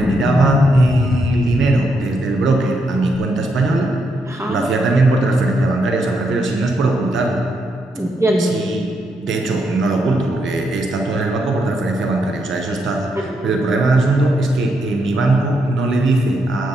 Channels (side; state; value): both; normal; correlation 0.79